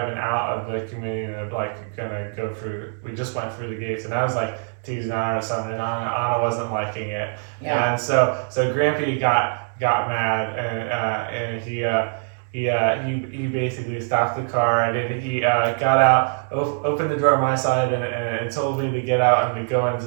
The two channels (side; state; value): left; silent; 62 dB below the other